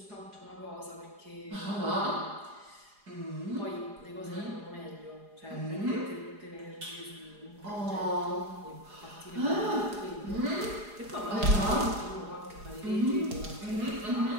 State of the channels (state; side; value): late; left; 4.8 ms